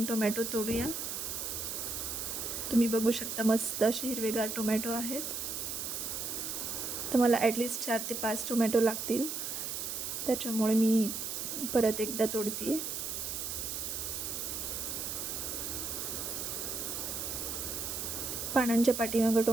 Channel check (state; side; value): noise; right; hiss, 4 dB below the sound